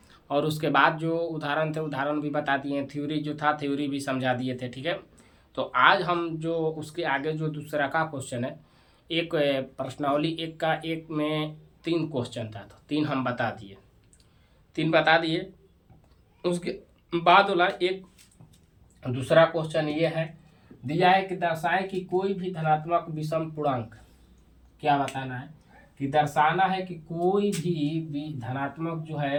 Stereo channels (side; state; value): both; identical; correlation 1.00